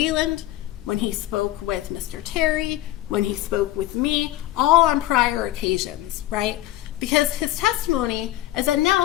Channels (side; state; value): right; quieter; 15.0 dB